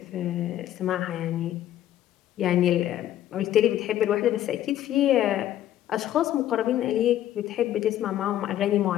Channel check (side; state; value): right; quieter; 12.4 dB